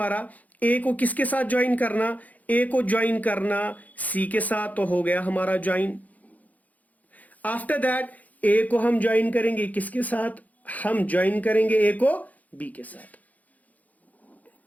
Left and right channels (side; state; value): right; late; 0.077 ms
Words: ए को किसके साथ ज्वाइन करना, ए को ज्वाइन करना सी के साथ, तो हो गया हमारा ज्वाइन। आफ्टर दैट ए को हम ज्वाइन करेंगे किसके साथ, हम ज्वाइन करेंगे ए को बी के साथ।